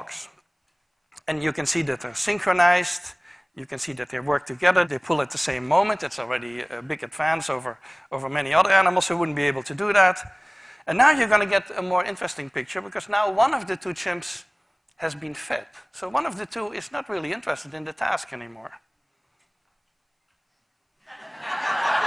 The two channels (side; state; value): both; identical; correlation 1.00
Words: And you can see that they're synchronized. You can see that they work together. They pull at the same moment. It's already a big advance over many other animals who wouldn't be able to do that. And now you're going to get a more interesting picture because now one of the two chimps has been fed. So one of the two is not really interested in the task anymore.